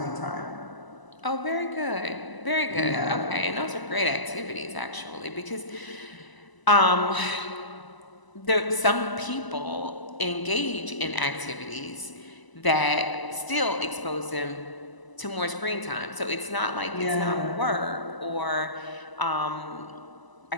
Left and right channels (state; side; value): late; right; 1.0 ms